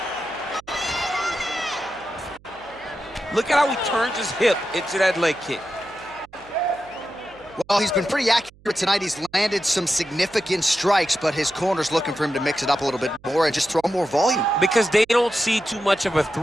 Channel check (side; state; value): right; noise; hum, 27 dB below the sound